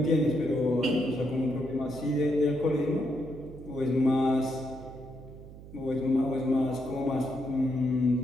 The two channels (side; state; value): right; noise; hum, 16 dB below the sound